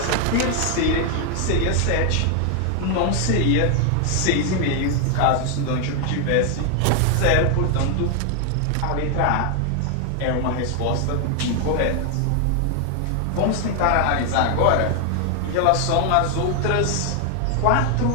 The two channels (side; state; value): both; different; correlation 0.00